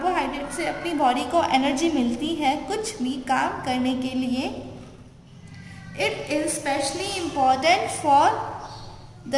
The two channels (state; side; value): identical; both; correlation 1.00